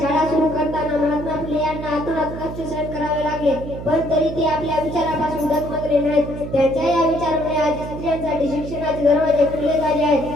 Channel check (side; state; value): right; noise; hum, 9 dB below the sound